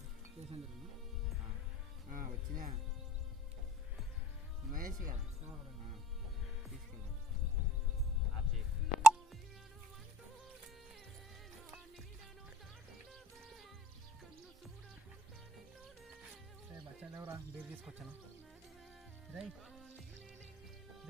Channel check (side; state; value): both; normal; correlation 0.53